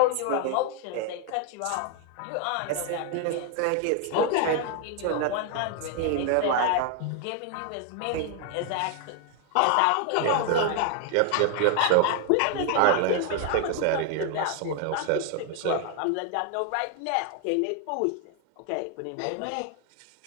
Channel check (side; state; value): both; different; correlation 0.00